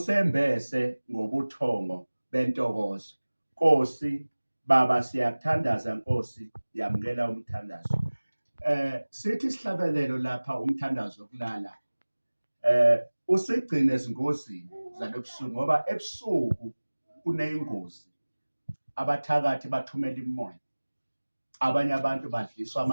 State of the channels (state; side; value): inverted; both; correlation -1.00